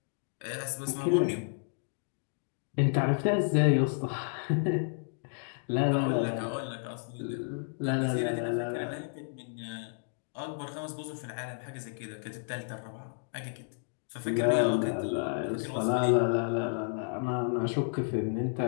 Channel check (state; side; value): silent; right; digital silence